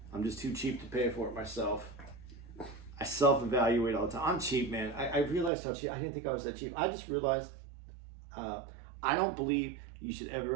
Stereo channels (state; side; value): drops out; left; at 5.5 s